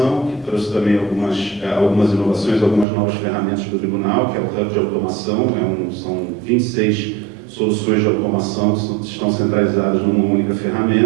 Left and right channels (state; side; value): drops out; left; at 2.9 s